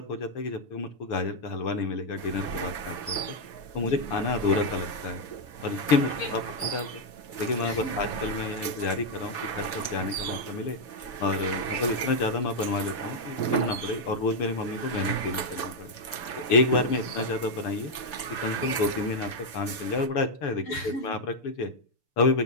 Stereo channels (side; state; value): right; late; 6.9 ms